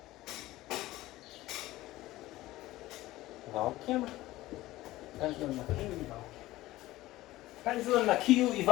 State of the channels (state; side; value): quieter; right; 17.0 dB